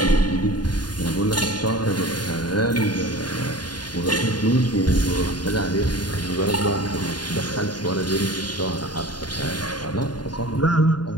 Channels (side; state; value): right; late; 0.70 ms